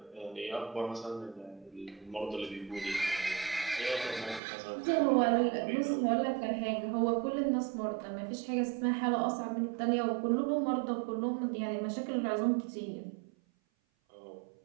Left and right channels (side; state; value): left; drops out; at 4.4 s